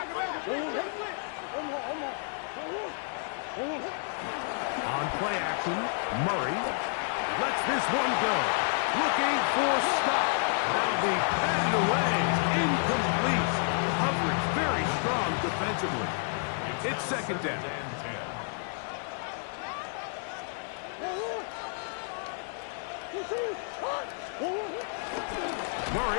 On play action, Murray lets this one go. Looking for Scott. That'll be batted away. Incomplete. Coverage very strong defensively. It's 2nd down.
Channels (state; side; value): silent; right; 58 dB below the other